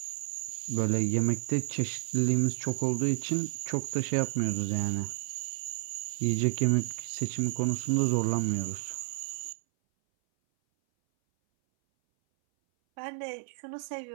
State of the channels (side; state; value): left; silent; 57 dB below the other